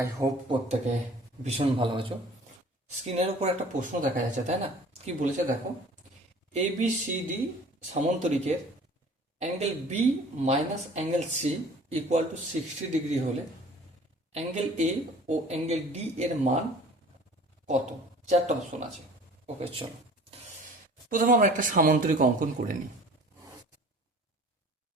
হোপ প্রত্যেকে ভীষণ ভালো আছো। স্ক্রিনের উপর একটা প্রশ্ন দেখা যাচ্ছে, তাই না? কি বলেছে দেখো, এ বি সি ডি সামান্তরিকের angle B minus angle C equal to 60 degree হলে অ্যাঙ্গেল এ ও অ্যাঙ্গেল ডি এর মান কত? চারটা অপশন আছে। ওকে, চলো প্রথমে আমরা একটা সামান্তরিক অঙ্কন করে নিই।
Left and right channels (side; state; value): both; normal; correlation 0.47